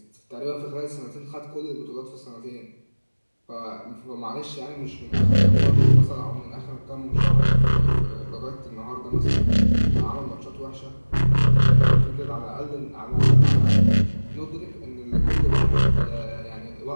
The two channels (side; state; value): both; inverted; correlation -1.00